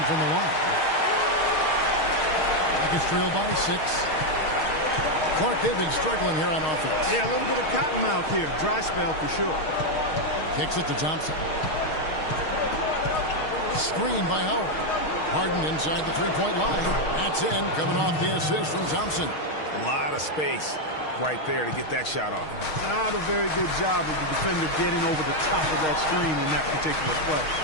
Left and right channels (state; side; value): late; right; 6.4 ms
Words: from the line. Rockets trail by 6. Clark, they've been struggling here on offense. Yeah, a little bit of cottonmouth here. Dry spell for sure. Kicks it to Thompson. Screen by Howard. Harden inside the three-point line. That's in, coming off the assist from Thompson. A lot of space right there to get that shot off. Not a very good job of the defender getting over the top of that screen in that particular play.